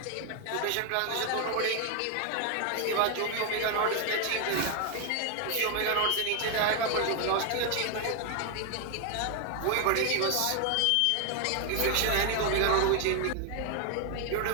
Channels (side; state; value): both; different; correlation 0.00